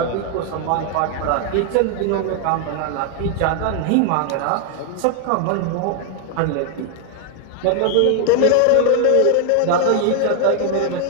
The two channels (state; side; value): different; both; correlation 0.00